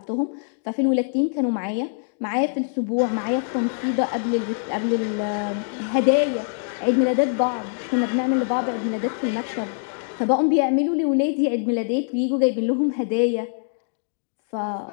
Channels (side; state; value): right; silent; digital silence